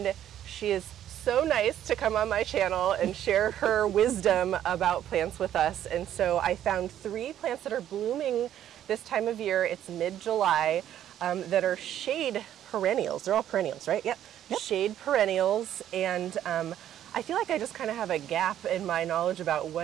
she is so nice to come on my channel and share her wisdom about plants with us. And so I found 3 plants that are blooming this time of year. It's mid-July, that are shade perennials. They're all perennials, right? Yep. Shade perennials. And I feel like I just kind of have a gap in my knowledge about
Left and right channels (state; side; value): quieter; left; 11.2 dB